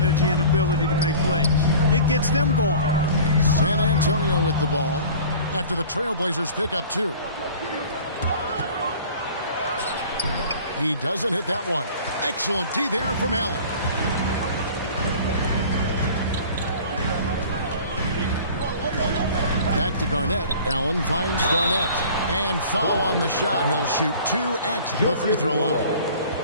and ability to make plays. It gets them going. San Antonio with the ball after the Trailblazers pick up 2. He doesn't hit that one. Excellent D there from Allen. Back to Garnett. Allen finds Garnett. And foul on the shot. He'll shoot 2 at the free throw line.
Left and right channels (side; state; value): both; inverted; correlation -0.44